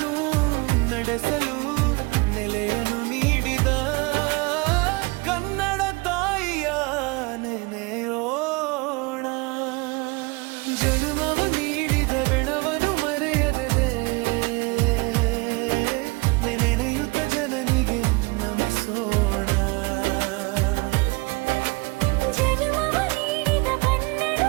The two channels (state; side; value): quieter; left; 26.3 dB